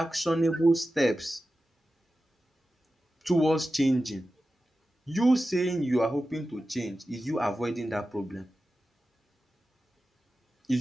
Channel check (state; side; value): normal; both; correlation 0.93